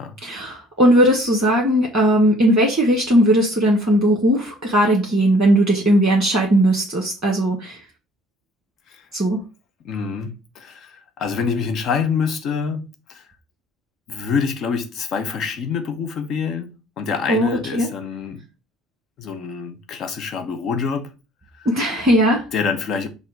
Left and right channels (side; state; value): both; normal; correlation 0.55